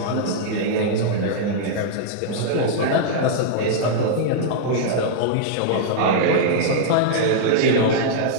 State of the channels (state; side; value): different; both; correlation -0.01